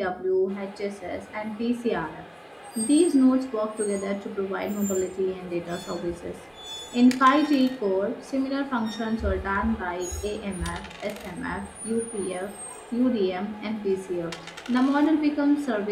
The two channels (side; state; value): both; identical; correlation 1.00